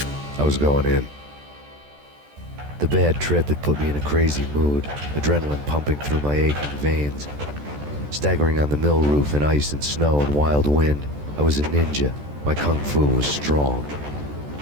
I was going in. The bad trip had put me in a crazy mood, adrenaline pumping through my aching veins. Staggering on the mill roof in ice and snow and wild wind, I was a ninja. My kung fu was strong.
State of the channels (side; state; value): left; late; 14 ms